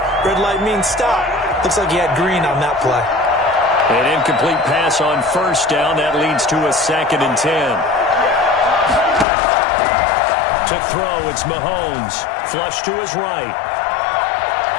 red light means stop. Looks like he had green on that play. An incomplete pass on first down. That leads to a 2nd and 10. To throw, it's Mahomes. Flush to his right.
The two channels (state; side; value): drops out; right; at 9.2 s